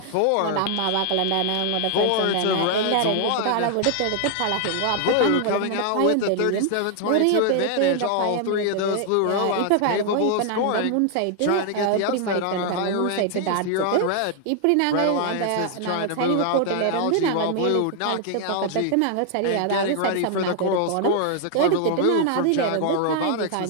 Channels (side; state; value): both; different; correlation 0.00